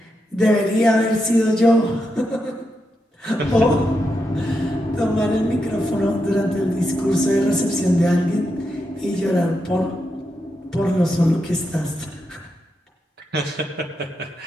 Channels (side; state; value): both; normal; correlation 0.85